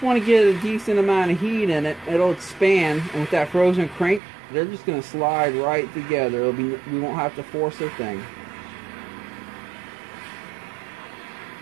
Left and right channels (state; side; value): drops out; left; at 4.2 s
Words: want to get a decent amount of heat in it. It'll expand, and with that frozen crank, they're just going to slide right together. We won't have to force a thing.